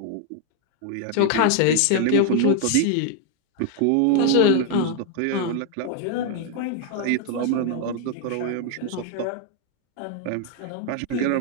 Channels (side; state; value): both; different; correlation 0.00